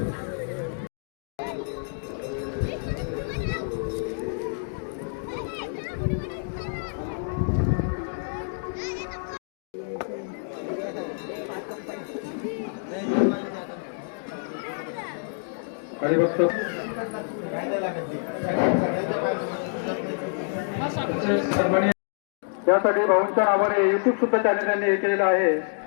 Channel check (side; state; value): right; silent; digital silence